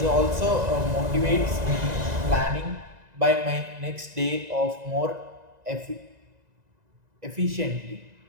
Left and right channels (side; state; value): left; late; 2.0 ms